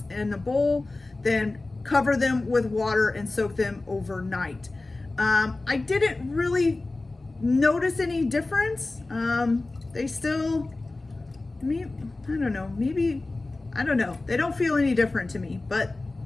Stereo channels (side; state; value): right; quieter; 3.1 dB